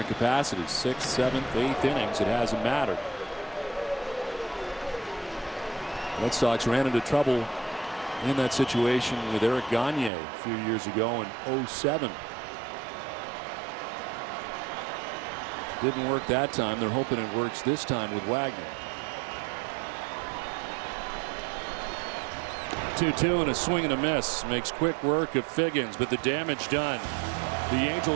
capacities. 6th, 7th, 8th innings, it hasn't mattered. Red Sox ran into trouble in that situation with Eric Gagne a few years ago in 07. Didn't work that time. They're hoping it works this time with Wagner. 2-2 and a swing and a miss. Makes quick work of Figgins, but the damage done. The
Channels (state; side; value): drops out; left; at 10.1 s